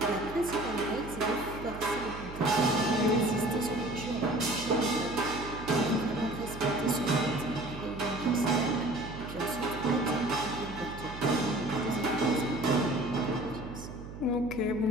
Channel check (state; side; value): noise; right; hum, 12 dB below the sound